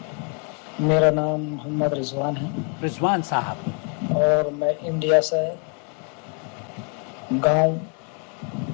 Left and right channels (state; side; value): quieter; right; 39.4 dB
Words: میرا نام محمد رضوان ہے رضوان صاحب، اور میں انڈیا سے گاؤں